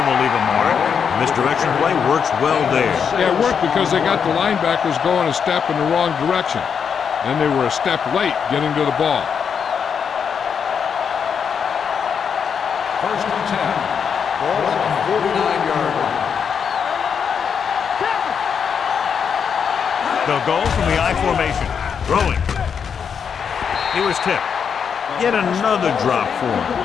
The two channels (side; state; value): right; quieter; 6.9 dB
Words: will leave a mark. Misdirection play works well there. Yeah, it worked because they got the linebackers going a step in the wrong direction. Then they were a step late getting to the ball. 1st and 10. Ball on the 49-yard line. They'll go from the I formation. Throwing. He was tipped. Yet another drop for him.